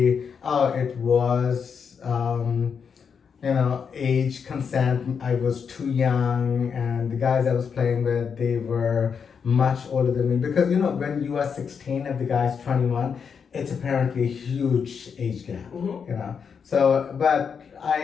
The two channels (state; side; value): quieter; right; 6.5 dB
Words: it was, age consent. I was too young, and the guys I was playing with, they were much older than me. Because, when you are 16 and the guy's 21, it's apparently a huge age gap, So, but